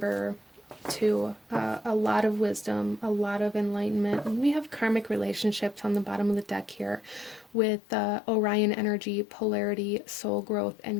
2, a lot of wisdom, a lot of enlightenment. And we have karmic relationships on the bottom of the deck here with Orion energy, polarity, soul growth,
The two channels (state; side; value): drops out; right; at 7.6 s